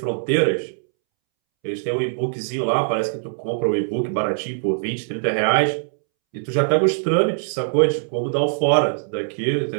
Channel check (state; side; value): silent; left; 64 dB below the other